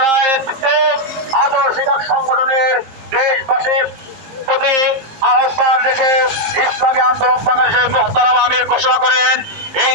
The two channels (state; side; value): late; left; 19 ms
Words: আদর্শিক সংগঠনের দেশবাসীর প্রতি আহ্বান রেখে ইসলামী আন্দোলন বাংলাদেশের মোহতারাম আমির ঘোষণা করেন, এই